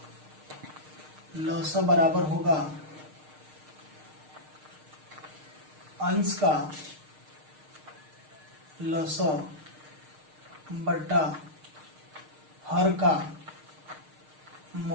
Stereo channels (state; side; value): late; left; 6.5 ms